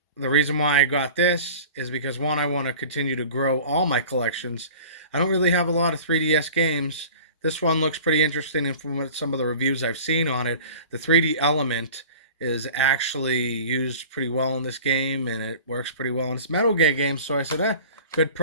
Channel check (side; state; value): both; inverted; correlation -0.42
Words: the reason why I got this is because, one, I want to continue to grow all my collections. I don't really have a lot of 3DS games. This one looks pretty interesting, and from some of the reviews I've seen on it, the 3D element is actually used pretty well in this game, and it works pretty well in this Metal Gear game. So I said, good